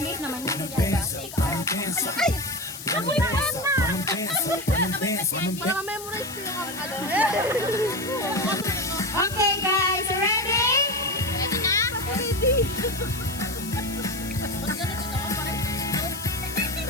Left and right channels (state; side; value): noise; left; hiss, 12 dB below the sound